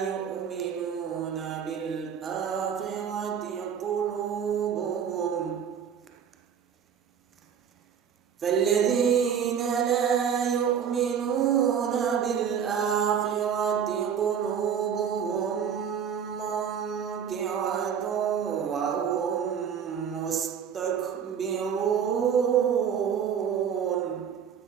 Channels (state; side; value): quieter; left; 7.8 dB